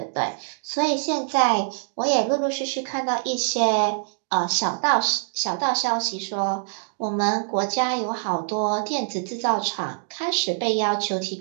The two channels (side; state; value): left; silent; digital silence